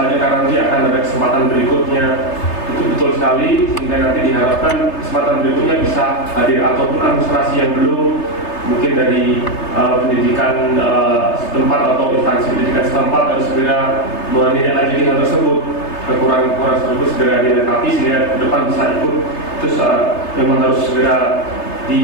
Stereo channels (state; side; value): late; right; 3.3 ms